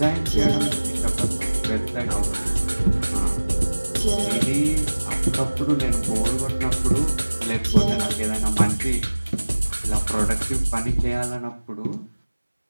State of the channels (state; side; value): inverted; both; correlation -1.00